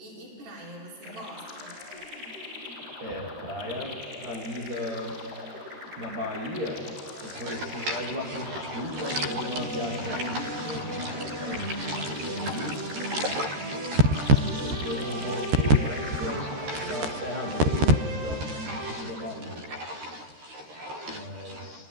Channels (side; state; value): left; late; 13 ms